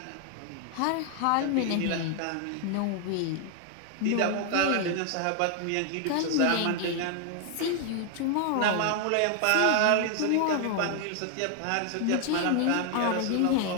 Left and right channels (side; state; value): both; different; correlation 0.00